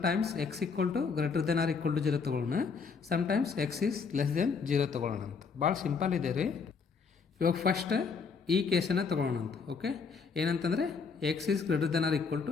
x > 0 ತೊಗೊಳ್ಳೋಣ, sometimes x is less than 0 ತೊಗೊಳ್ಳೋಣಂತ. ಭಾಳ ಸಿಂಪಲ್ ಇದೆ ರೀ. ಇವಾಗ ಫಸ್ಟ್ ಈ ಕೇಸನ್ನು ತೊಗೊಳ್ಳೋಣಂತ. ಓಕೆ, ಏನಂತಂದರೆ x is greater than or equal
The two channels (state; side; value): quieter; right; 5.4 dB